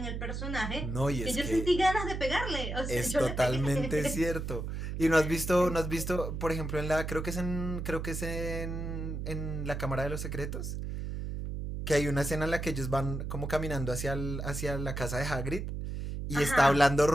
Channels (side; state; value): right; noise; hum, 4 dB below the sound